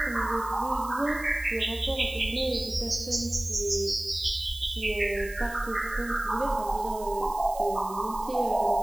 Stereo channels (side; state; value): right; noise; hiss, 17 dB below the sound